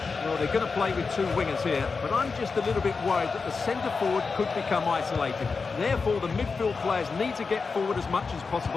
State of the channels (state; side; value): quieter; right; 4.7 dB